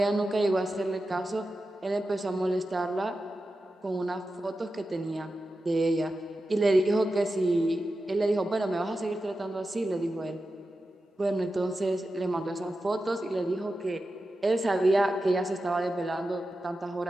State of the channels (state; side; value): normal; both; correlation 0.92